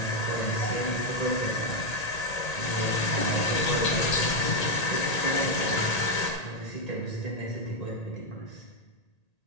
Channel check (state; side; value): late; right; 1.8 ms